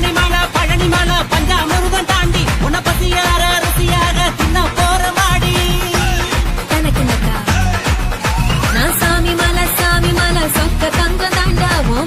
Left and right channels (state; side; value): identical; both; correlation 1.00